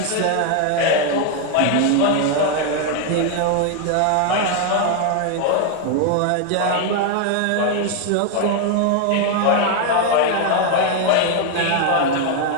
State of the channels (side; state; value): both; different; correlation 0.00